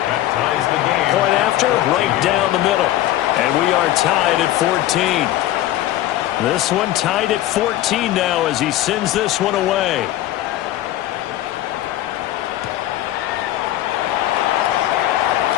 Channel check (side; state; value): right; quieter; 14.3 dB